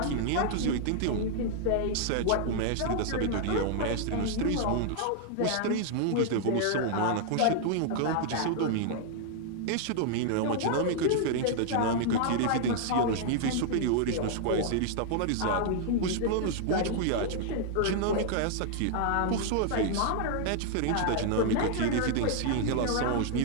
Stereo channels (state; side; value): different; both; correlation -0.01